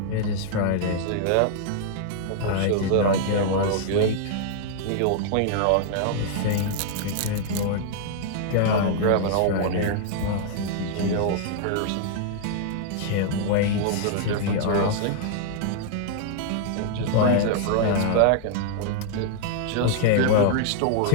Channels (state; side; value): different; both; correlation -0.01